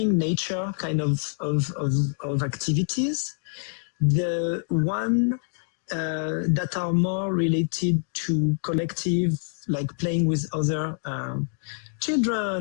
nature kind of activities. The one that are more related to collective, like playing with other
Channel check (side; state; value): right; silent; digital silence